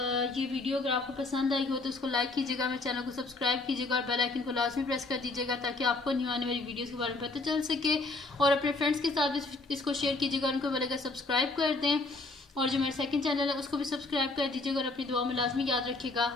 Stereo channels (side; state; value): right; quieter; 3.3 dB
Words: ये वीडियो अगर आपको पसंद आई हो तो उसको लाइक कीजिएगा, मेरे चैनल को सब्सक्राइब कीजिएगा, और बेल आइकन को लाजमी प्रेस कर दीजिएगा ताकि आपको न्यू आने वाली वीडियोस के बारे में पता चल सके। और अपने फ्रेंड्स के साथ भी इसको शेयर कीजिएगा, उनको बोलेगा सब्सक्राइब कर दें, और जो मेरा सेकंड चैनल है उसको भी सब्सक्राइब कर दीजिएगा, और अपनी दुआ में लाजमी याद रखिएगा।